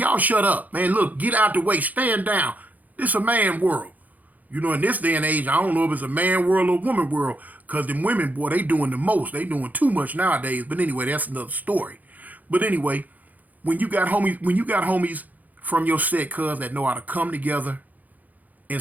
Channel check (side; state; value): left; late; 0.080 ms